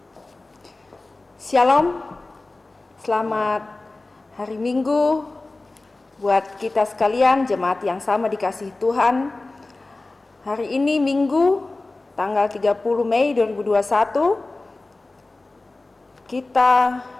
Shalom, selamat hari Minggu buat kita sekalian, jemaat yang sama dikasihi Tuhan. Hari ini Minggu, tanggal 30 Mei 2021, kita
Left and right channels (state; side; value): quieter; right; 3.2 dB